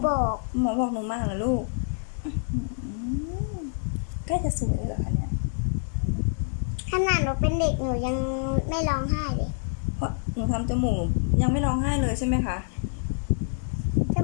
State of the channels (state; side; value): silent; right; digital silence